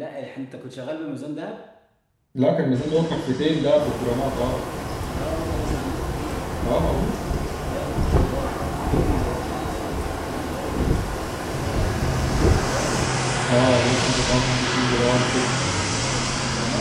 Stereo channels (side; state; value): both; identical; correlation 1.00